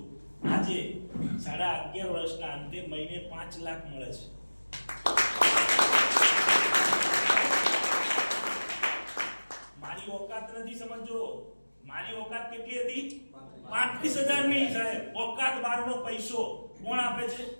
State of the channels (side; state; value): both; inverted; correlation -1.00